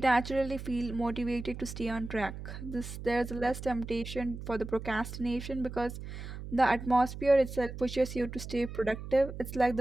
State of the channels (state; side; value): noise; right; hum, 9 dB below the sound